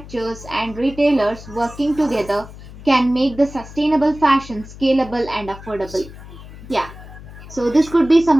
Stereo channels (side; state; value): left; noise; hum, 16 dB below the sound